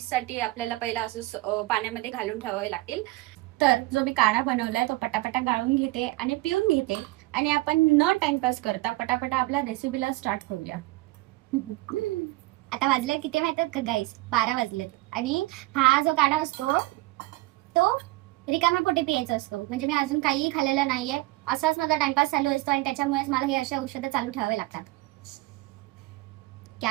आपल्याला पहिला असं पाण्यामध्ये घालून ठेवावे लागतील. तर जो मी काढा बनवलाय तो पटापटा गाळून घेते आणि पिऊन घेते. आणि आपण न टाइमपास करता पटापटा आपल्या रेसिपीला स्टार्ट करूया. आता वाजले किती माहितात का गाईस? 12 वाजलेत. आणि हा जो काढा असतो तो रिकाम्या पोटी प्यायचं असतो. म्हणजे मी अजून काहीही खाल्लेलं नाहीये, असाच माझा टाइमपास चालू असतो आणि त्याच्यामुळेच मला हे अशा औषधं चालू ठेवावे लागतात.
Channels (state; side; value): quieter; left; 20.1 dB